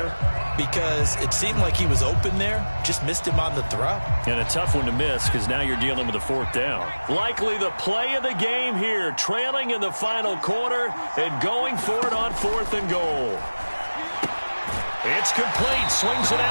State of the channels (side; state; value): both; inverted; correlation -1.00